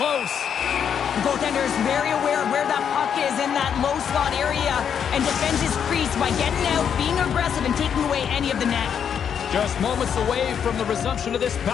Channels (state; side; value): quieter; right; 8.0 dB